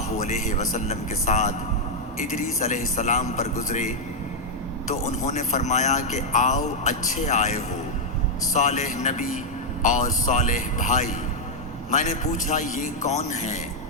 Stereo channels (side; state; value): both; normal; correlation -0.03